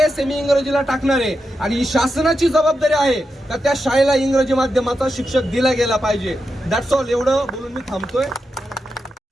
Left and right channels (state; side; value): normal; both; correlation 0.87